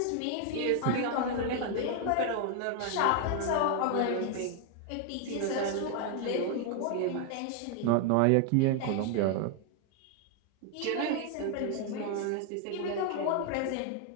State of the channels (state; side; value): different; both; correlation 0.00